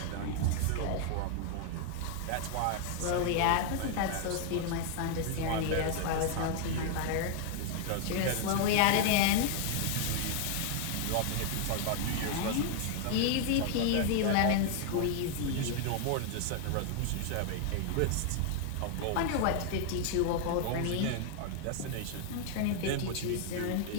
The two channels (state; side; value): different; both; correlation 0.00